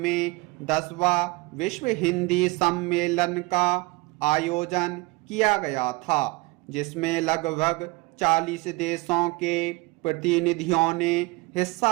10वां विश्व हिंदी सम्मेलन का आयोजन किया गया था, जिसमें लगभग 40 देशों के प्रतिनिधियों ने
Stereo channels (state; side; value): quieter; left; 23.9 dB